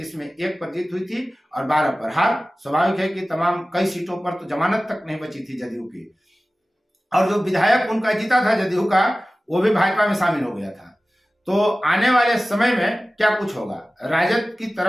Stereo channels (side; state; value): both; normal; correlation 0.96